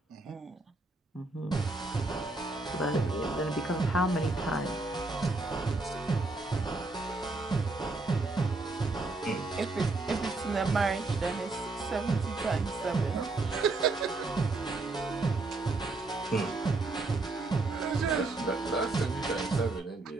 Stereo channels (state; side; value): quieter; left; 3.3 dB